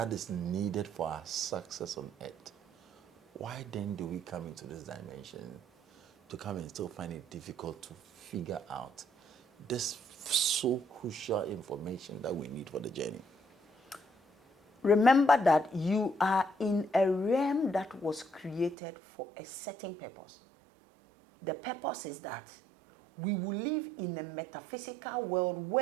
is needed for our success on earth, why then do we come into this dimension to come and still find it difficult to figure out this so crucial information that we need for the journey? Remember that you are in a realm that was created for a certain purpose. The purpose is that we will live in a metaphysical world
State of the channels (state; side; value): drops out; left; at 18.8 s